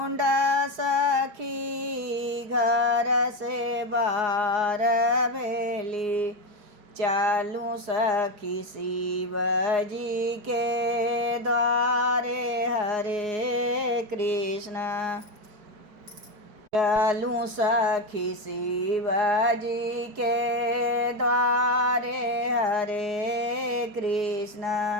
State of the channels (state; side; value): late; left; 4.8 ms